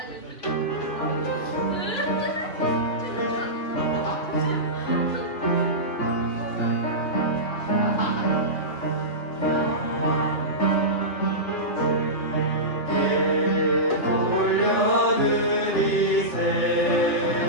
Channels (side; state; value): right; late; 2.9 ms